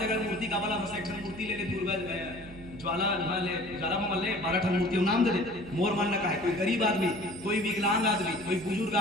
मूर्ति का वाला बस एक मूर्ति ले ले, दुर्गा ज्वाला ले, ज्वाला में ले 12 ठन मूर्ति नाम दे दे। मोर मानना का है, कोई गरीब आदमी, कोई विकलांग आदमी, कोई बुजुर्ग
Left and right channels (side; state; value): right; noise; hum, 17 dB below the sound